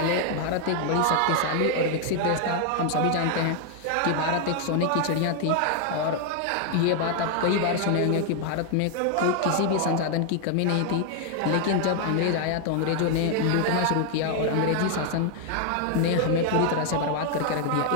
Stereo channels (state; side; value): different; both; correlation 0.01